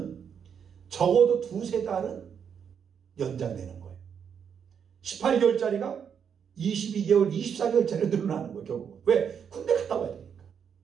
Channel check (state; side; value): quieter; left; 7.5 dB